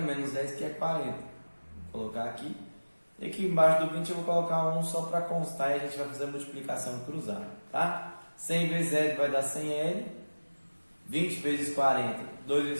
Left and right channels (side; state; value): both; inverted; correlation -1.00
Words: menos 10, que é 40. Vou colocar aqui. E aqui embaixo do 20 eu vou colocar 1 só para constar e a gente vai fazer a multiplicação cruzada, tá? 100 vezes L vai dar 100L. 20 vezes 40, 2